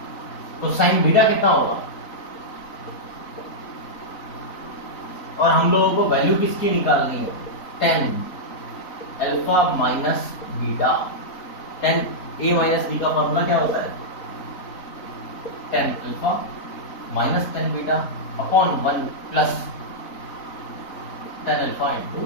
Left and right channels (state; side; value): late; right; 4.0 ms